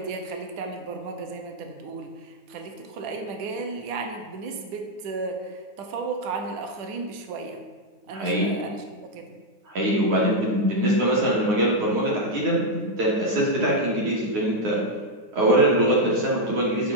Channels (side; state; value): left; late; 9.5 ms